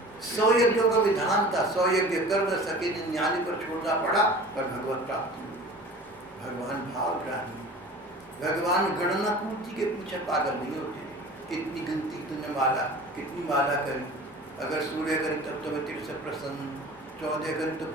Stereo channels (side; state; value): both; normal; correlation 0.40